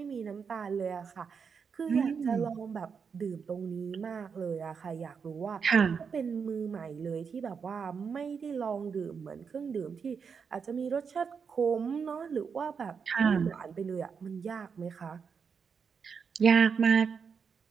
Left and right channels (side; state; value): left; quieter; 6.1 dB